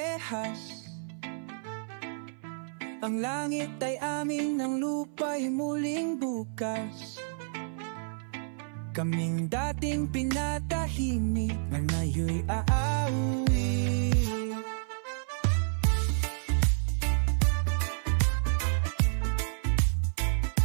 Ang langit ay amin, ang lupa'y muling bukas. Kaming dating pinatahimik, ngayon'y aawi.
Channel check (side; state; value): left; silent; 58 dB below the other